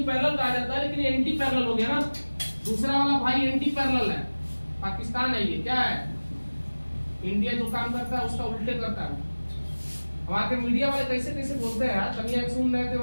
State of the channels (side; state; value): both; inverted; correlation -1.00